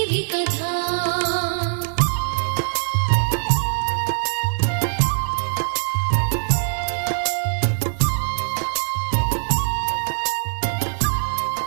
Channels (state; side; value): silent; left; digital silence